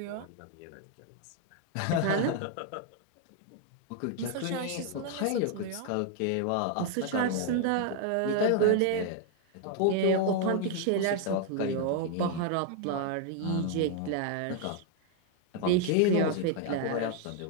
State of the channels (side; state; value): both; different; correlation 0.00